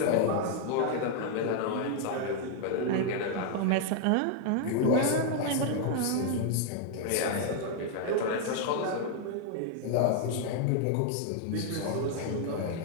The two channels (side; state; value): both; different; correlation 0.00